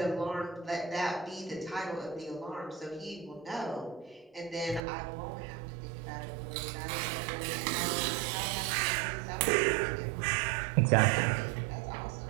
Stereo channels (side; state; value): left; drops out; at 4.8 s